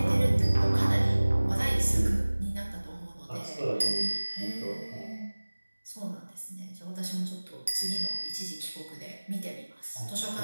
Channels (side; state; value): both; inverted; correlation -1.00